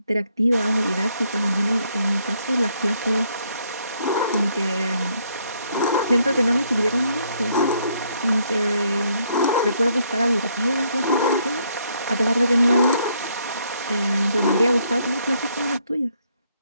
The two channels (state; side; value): inverted; both; correlation -0.71